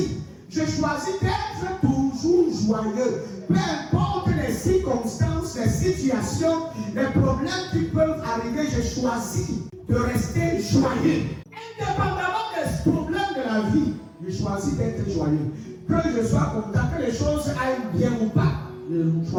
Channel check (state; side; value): identical; both; correlation 1.00